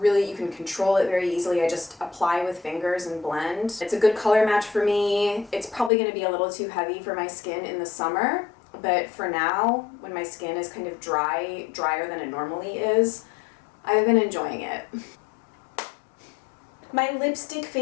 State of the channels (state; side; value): drops out; right; at 5.9 s